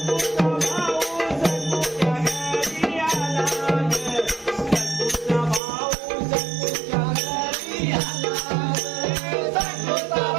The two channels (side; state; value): left; drops out; at 5.6 s